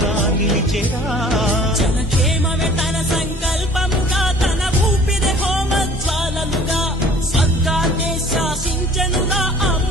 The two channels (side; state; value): both; normal; correlation 0.51